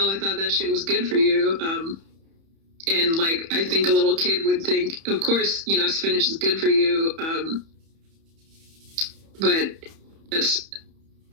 I thought that shit was good for you. And, like, I think a little kid would think, of course, spinach is good for you. But that's,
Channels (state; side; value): late; left; 31 ms